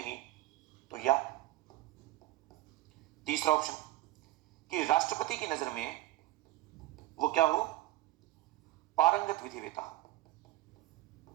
तो या तीसरा ऑप्शन कि राष्ट्रपति की नजर में वो क्या हो? पारंगत विधिवेता हो,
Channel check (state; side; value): quieter; left; 16.8 dB